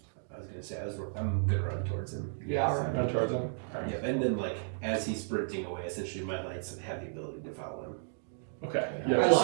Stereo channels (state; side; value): silent; left; digital silence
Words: was gonna say I'm gonna run towards him. Yeah, I'll run. Run towards him. Yep, and then like as he's sprinting away, essentially my lights have the ability to follow him. Okay. Yeah, Yeah. I'm